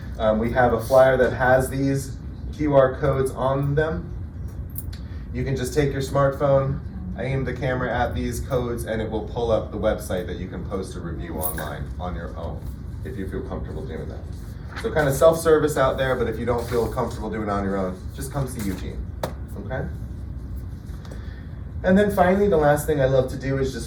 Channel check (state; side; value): identical; both; correlation 1.00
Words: We have a flyer that has these QR codes on them. You can just take your smartphone, aim the camera at these codes, and it will pull up the website that you can post a review online on your own, if you feel comfortable doing that. So kind of self-service out there, but if you don't feel comfortable doing it on your own, just come see Eugene, okay? And then finally, the last thing I love to do is